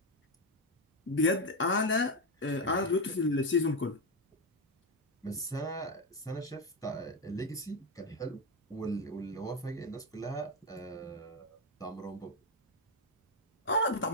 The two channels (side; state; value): both; normal; correlation 0.08